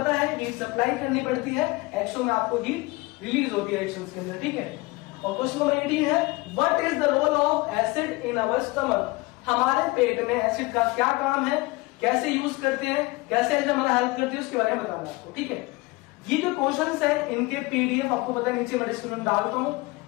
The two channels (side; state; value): right; quieter; 23.1 dB